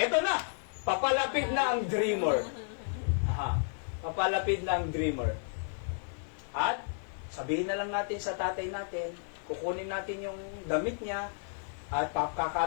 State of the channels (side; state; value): right; silent; digital silence